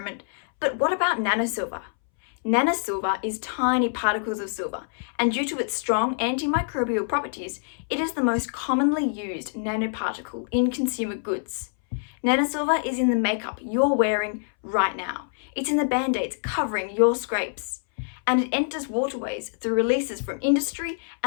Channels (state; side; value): silent; right; 61 dB below the other